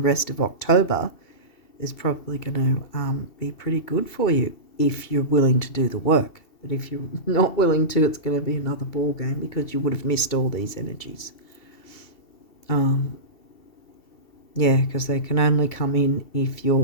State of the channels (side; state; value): right; late; 2.7 ms